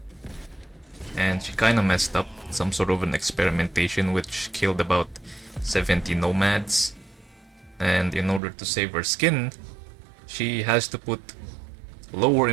and she kind of messed up some sort of an experimentation which killed about 70 nomads. And in order to save her skin, she has to put lower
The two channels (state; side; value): drops out; left; at 8.4 s